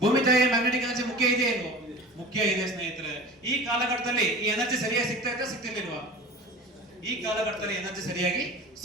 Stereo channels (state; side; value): normal; both; correlation 0.37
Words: ಭೂಮಿ ತಾಯಿಯ ಮ್ಯಾಗ್ನೆಟಿಕ್ ಎನರ್ಜಿ ಮುಖ್ಯ ಇದೆಯೇ ಇಲ್ವೋ? ಮುಖ್ಯ ಇದೆ ಸ್ನೇಹಿತರೆ. ಈ ಕಾಲಘಟ್ಟದಲ್ಲಿ ಈ ಎನರ್ಜಿ ಸರಿಯಾಗಿ ಸಿಗ್ತಿರ್ಲಿಲ್ವಾ? ಈ ಕಾಲಘಟ್ಟದಲ್ಲಿ ಎನರ್ಜಿ ಸರಿಯಾಗಿ